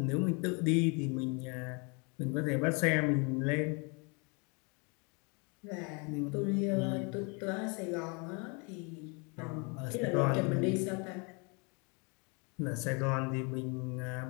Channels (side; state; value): right; quieter; 32.9 dB